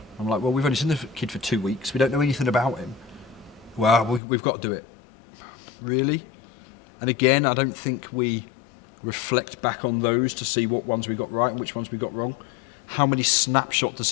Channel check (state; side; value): drops out; right; at 4.2 s